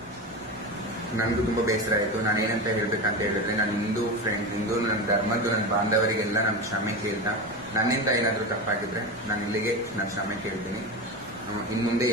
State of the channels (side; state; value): left; noise; rumble, 24 dB below the sound